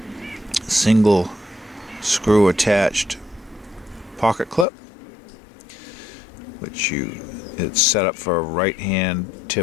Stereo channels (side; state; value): right; drops out; at 4.7 s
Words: single screw attached pocket clip, which it's set up for a right hand